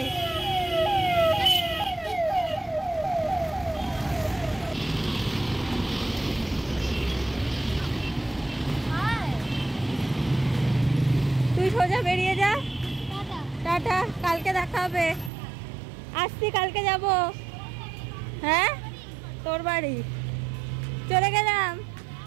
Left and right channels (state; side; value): drops out; left; at 15.3 s